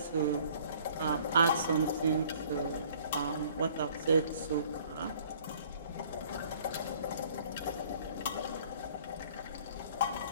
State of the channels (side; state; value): both; inverted; correlation -0.55